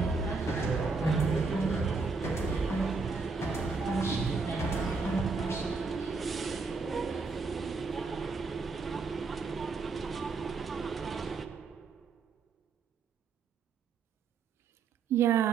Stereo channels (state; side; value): quieter; left; 4.5 dB